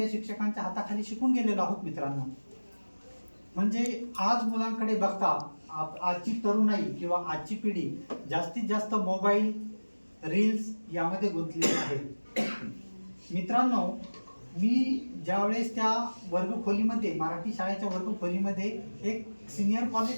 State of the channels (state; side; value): inverted; both; correlation -1.00